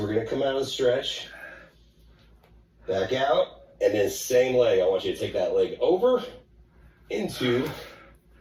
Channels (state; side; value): identical; both; correlation 1.00